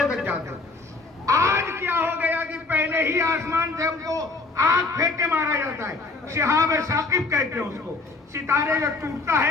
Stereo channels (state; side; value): quieter; right; 3.7 dB